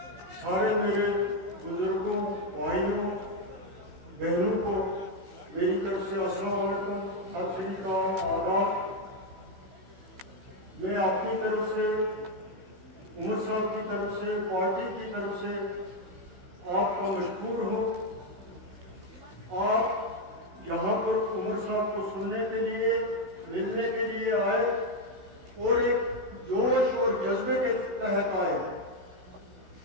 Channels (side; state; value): left; late; 16 ms